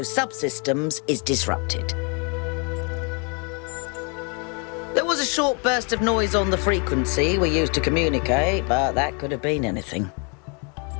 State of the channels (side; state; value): right; quieter; 34.9 dB